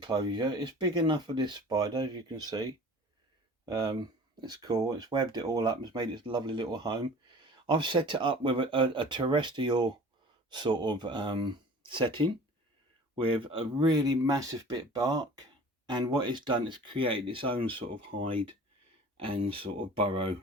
It's big enough for this spider, as you can see. It's cool. It's webbed it all up. It's made its lovely little home. I've set it up with a terrestrial sort of setting with a really massive bit of bark, and what it's done is create its own sort of hide and sort of burrow,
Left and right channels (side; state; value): both; normal; correlation 0.44